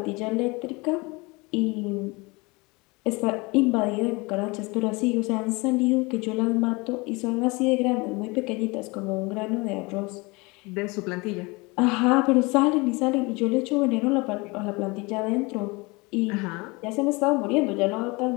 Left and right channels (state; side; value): quieter; right; 25.8 dB